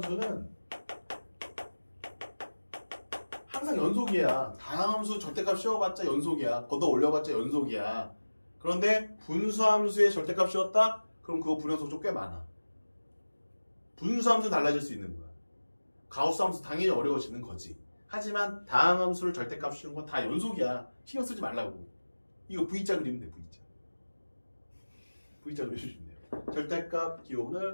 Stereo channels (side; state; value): both; inverted; correlation -1.00